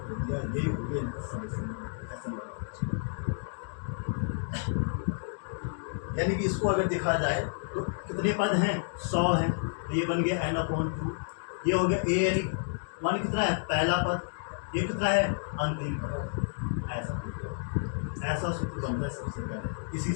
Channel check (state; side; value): silent; right; digital silence